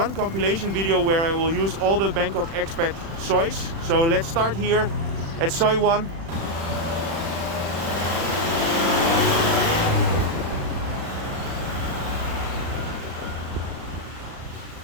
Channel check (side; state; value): left; late; 36 ms